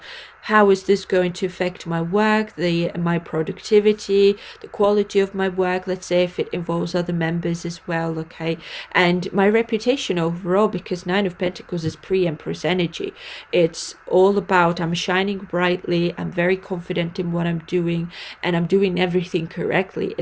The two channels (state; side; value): identical; both; correlation 1.00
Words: how is this going to affect my work, my productivity, the quality of my work, let's say if it involves other members as well, okay, and my reputation overall, because Nine of Pentacles is pre-Empress energy. It's all about I'm shining brightly, I'm very confident in what I'm doing, and I'm doing everything correctly